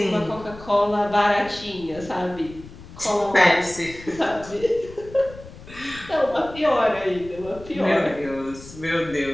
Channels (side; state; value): left; noise; rumble, 17 dB below the sound